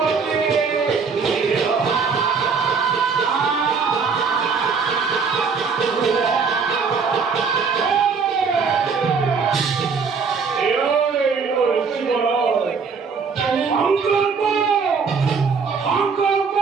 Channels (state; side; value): quieter; left; 5.4 dB